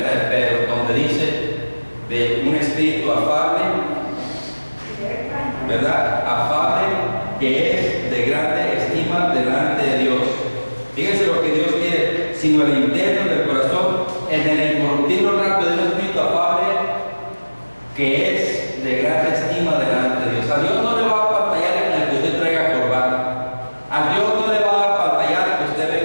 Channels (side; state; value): both; inverted; correlation -1.00